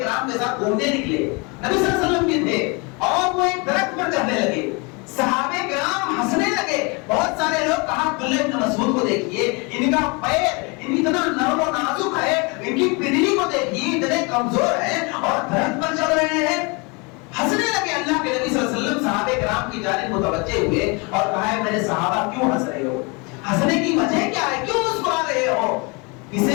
کے ساتھ گھومنے نکلے, نبی صلی اللہ علیہ وسلم کے تھے, اور وہ ایک درخت پر چڑھنے لگے. صحابہ کرام ہنسنے لگے, بہت سارے لوگ کہا عبداللہ ابن مسعود کو دیکھیے، ان کا پیر اتنا نرم و نازک ہے، ان کی پنڈلی کو دیکھیے اتنے کمزور ہیں اور درخت پر چل رہے ہیں۔ ہنسنے لگے اللہ کے نبی صلی اللہ علیہ وسلم صحابہ کرام کی جانب متوجہ ہوئے اور کہا ہے میرے صحابہ کیوں ہنس رہے ہو؟ ہنسنے کی وجہ کیا ہے؟ کیوں مسکرا رہے ہو؟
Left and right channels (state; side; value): quieter; right; 29.9 dB